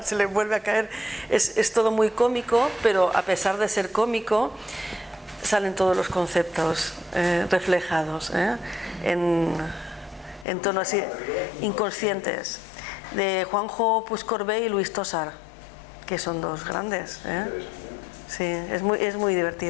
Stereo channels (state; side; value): drops out; right; at 10.5 s